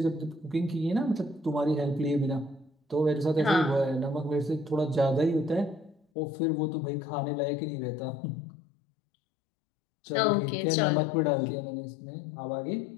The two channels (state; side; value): drops out; right; at 6.0 s